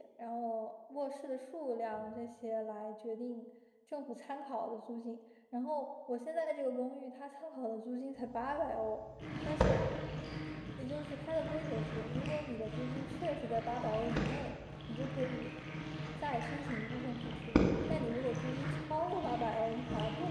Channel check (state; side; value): identical; both; correlation 1.00